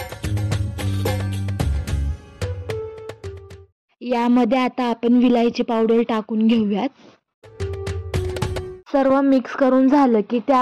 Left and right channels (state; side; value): identical; both; correlation 1.00